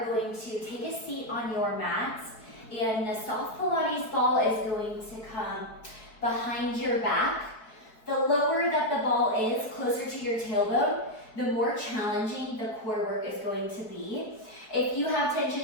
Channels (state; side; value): late; right; 4.6 ms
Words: going to take a seat on your mat, and the soft Pilates ball is going to come behind your back. The lower that the ball is, closer to your tailbone, the more challenging the core work is going to be. If you have